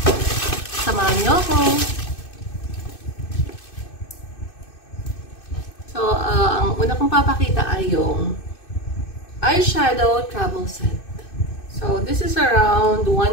Samahan niyo ako. So, ang una kong papakita ay yung eyeshadow travel set. So, this is around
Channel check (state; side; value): late; right; 2.6 ms